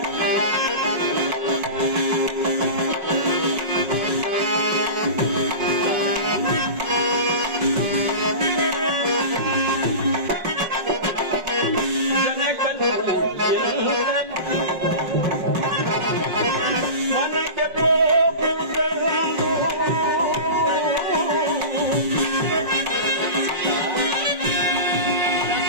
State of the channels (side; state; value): left; late; 5.5 ms